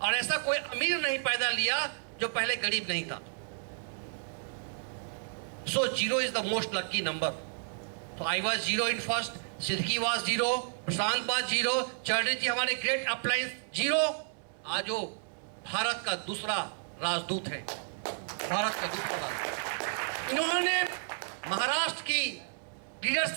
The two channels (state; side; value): silent; left; digital silence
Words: ऐसा कोई अमीर नहीं पैदा लिया जो पहले गरीब नहीं था। So 0 is the most lucky number. So I was 0 in first, Siddiqui was 0, Prashant was 0, Chaudhary जी हमारे ग्रेट अपलाइंस 0। आज वो भारत का दूसरा राजदूत है, भारत का दूसरा। उन्होंने महाराष्ट्र की